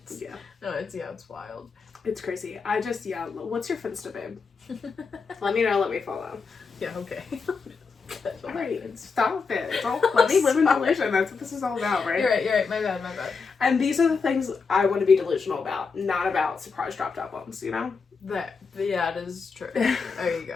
wild. It's crazy. What's your Finsta, babe? Let me know. Let me follow. Yeah. Okay. Alright, stop it. Let me live in delusion. That's what this is all about, right? You're right. My bad. And these are the things I want to be delusional about, not about surprise dropped albums, you know? It is true. There you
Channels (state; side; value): quieter; right; 5.0 dB